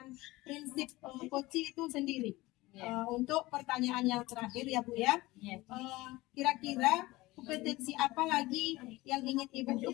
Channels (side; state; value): right; quieter; 19.8 dB